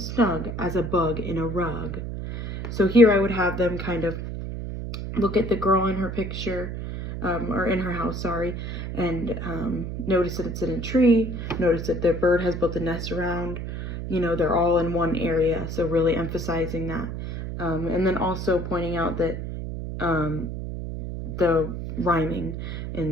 as a bug in a rug. So here I would have them kind of look at the girl in her picture, or in her house, sorry, and notice that it's in a tree, notice that the bird has built a nest around, they're all in one area, so really emphasizing that. And then also pointing out that the rhyming in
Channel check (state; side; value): noise; right; hum, 6 dB below the sound